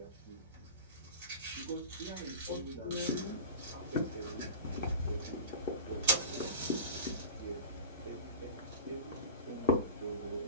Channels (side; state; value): both; inverted; correlation -0.31